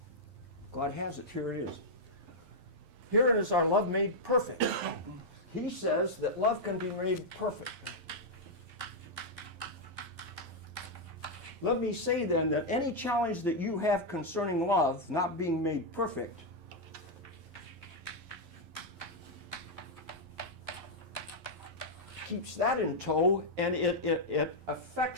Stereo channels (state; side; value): late; left; 11 ms